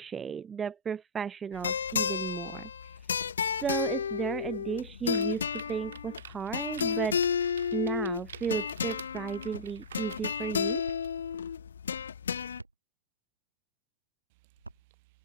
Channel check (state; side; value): normal; both; correlation -0.19